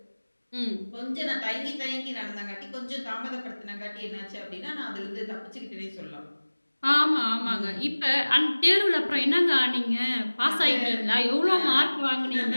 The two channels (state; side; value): inverted; both; correlation -1.00